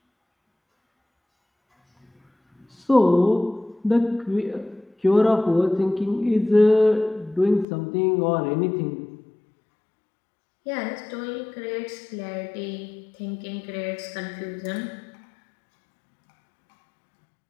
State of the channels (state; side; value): drops out; right; at 7.7 s